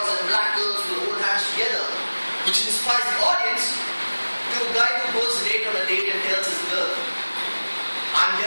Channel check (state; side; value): inverted; both; correlation -1.00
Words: and black girls will hold hands together, which inspires the audience, to a guy who goes late on a date and tells his girl, I'm